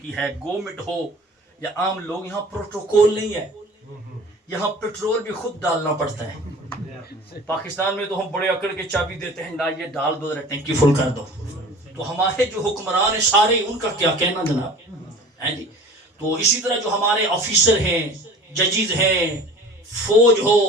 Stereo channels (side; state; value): both; normal; correlation 0.43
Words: ہے، گورنمنٹ ہو یا عام لوگ، یہاں پروٹوکول نہیں ہے. یہاں پیٹرول بھی خود ڈالنا پڑتا ہے. پاکستان میں تو ہم بڑے اکڑ کے چابی دیتے ہیں، نہ یہ ڈال دو، ٹینکی فل کر دو. تو ہمارے جو حکمران ہیں سارے، ان کا کیا کہنا جناب جی. تو اسی طرح جو ہمارے آفیسر ہیں، ججز ہیں، فوج ہو،